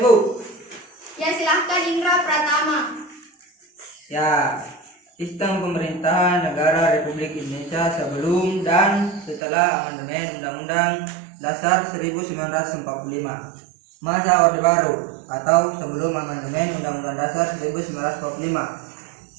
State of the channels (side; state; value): left; drops out; at 9.4 s